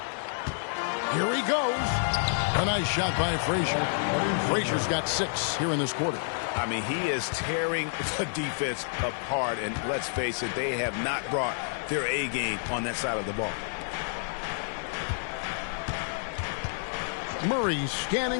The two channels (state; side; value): silent; right; digital silence